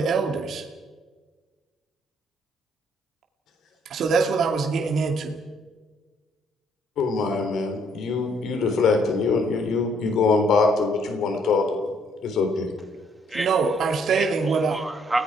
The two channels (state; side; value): normal; both; correlation 0.67